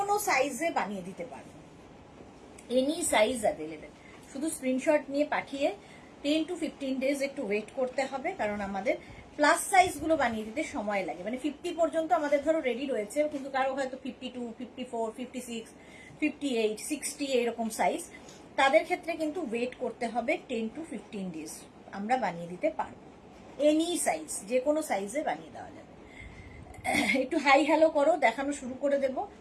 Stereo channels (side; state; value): both; identical; correlation 1.00